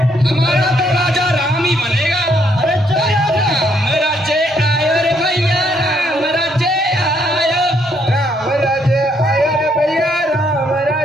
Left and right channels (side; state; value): both; normal; correlation 0.71